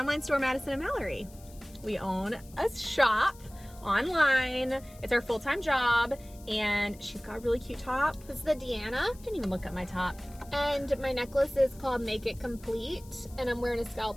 store, Madison and Mallory. We own a shop online. It's our full-time job, and she's got a really cute top. This is the Deanna. Didn't even look at my top. And my necklace is called Make It Complete, and I'm wearing a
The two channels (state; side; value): noise; left; hiss, 23 dB below the sound